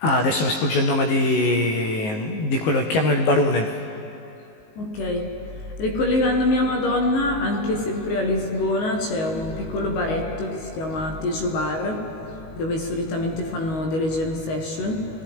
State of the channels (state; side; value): late; right; 19 ms